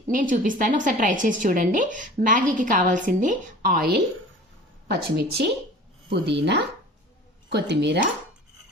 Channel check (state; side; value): normal; both; correlation 0.42